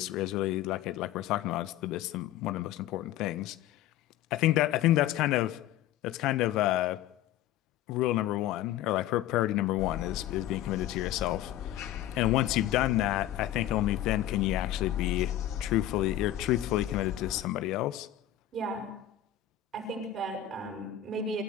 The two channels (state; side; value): quieter; right; 12.4 dB